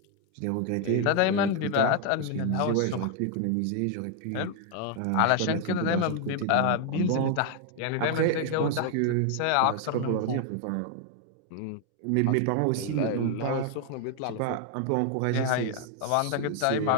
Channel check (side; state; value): both; different; correlation 0.00